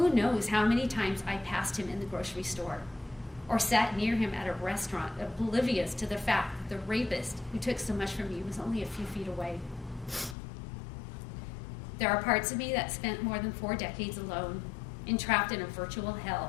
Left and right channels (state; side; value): drops out; right; at 10.4 s